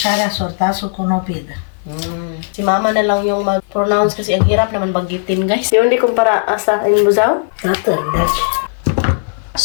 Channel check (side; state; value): right; silent; 57 dB below the other